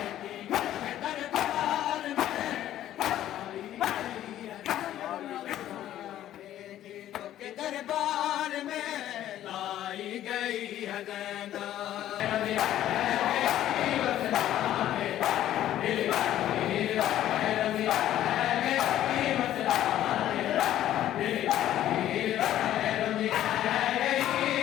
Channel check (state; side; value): quieter; right; 12.5 dB